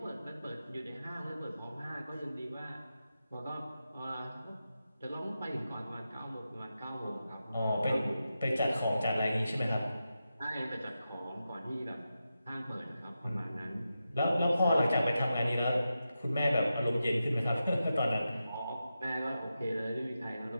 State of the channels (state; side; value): inverted; both; correlation -0.90